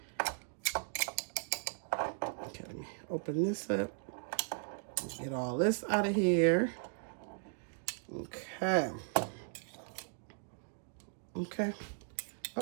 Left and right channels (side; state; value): left; silent; digital silence